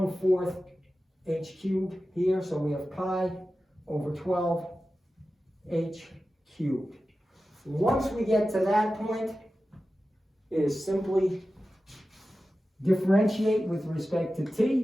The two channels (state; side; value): normal; both; correlation 0.94